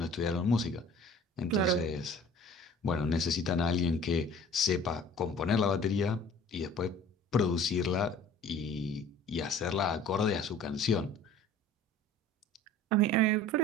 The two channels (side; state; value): both; normal; correlation 0.47